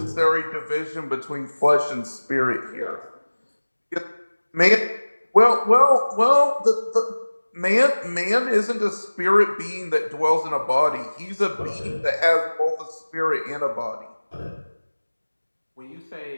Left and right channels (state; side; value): inverted; both; correlation -1.00